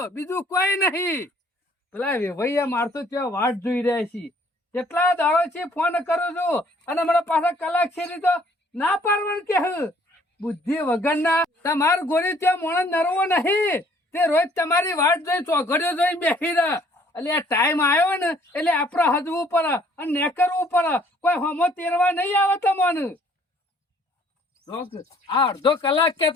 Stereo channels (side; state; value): both; normal; correlation 0.60